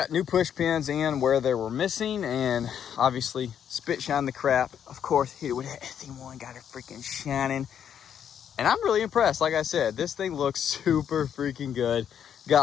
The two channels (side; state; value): right; quieter; 8.8 dB